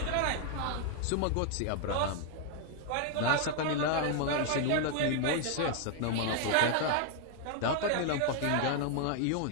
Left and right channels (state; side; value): different; both; correlation 0.00